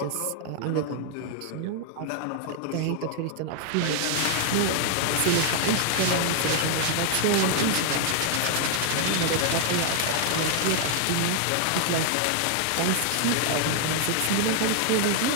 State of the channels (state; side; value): different; both; correlation 0.00